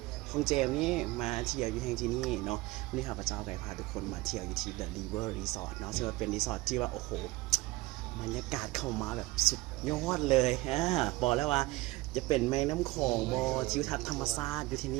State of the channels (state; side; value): quieter; left; 20.5 dB